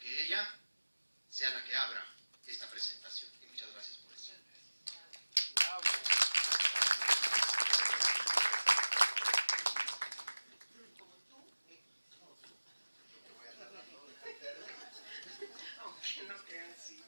ella sea la que abra esta presentación. Y muchas gracias por eso. Bravo. Como tú, aunque no crean, sí.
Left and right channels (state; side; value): inverted; both; correlation -1.00